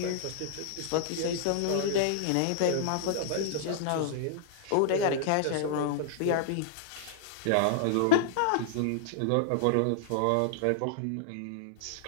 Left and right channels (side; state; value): both; different; correlation -0.01